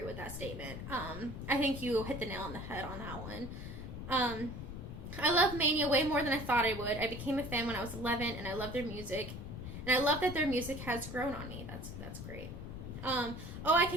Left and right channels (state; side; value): noise; left; rumble, 8 dB below the sound